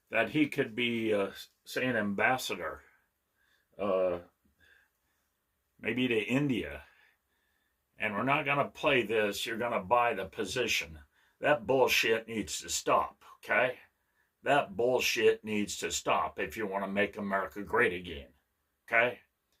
that he could be, say, an ambassador, uh, maybe to India. And we're not going to play this. You're going to buy the position. That bullshit needs to stop, okay? That bullshit needs to stop if you want to make America great again, okay?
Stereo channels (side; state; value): both; identical; correlation 1.00